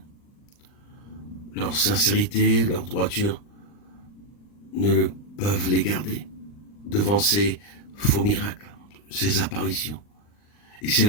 Leur sincérité, leur droiture ne peuvent les garder devant ces faux miracles, ces apparitions. Et si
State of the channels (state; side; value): late; right; 39 ms